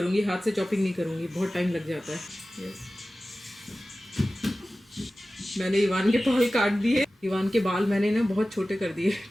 हाथ से चॉपिंग नहीं करूँगी, बहुत टाइम लग जाता है। मैंने इवान के बाल काट दिए। इवान के बाल मैंने ना बहुत छोटे कर दिए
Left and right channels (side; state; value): both; normal; correlation 0.96